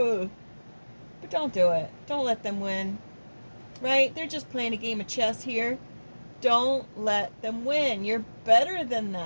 but don't do it. Don't let them win. Right? They're just playing a game of chess here. Don't let them win. You're better than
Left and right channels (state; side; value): inverted; both; correlation -1.00